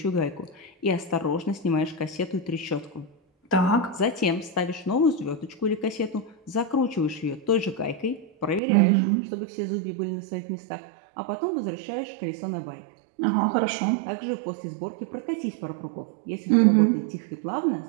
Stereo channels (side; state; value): left; drops out; at 8.6 s